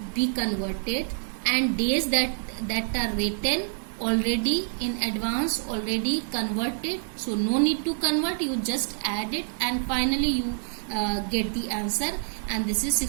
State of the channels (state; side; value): silent; left; digital silence